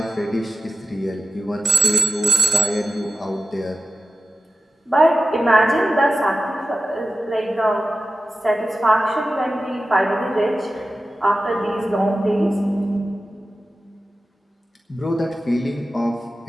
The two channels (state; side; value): normal; both; correlation 0.94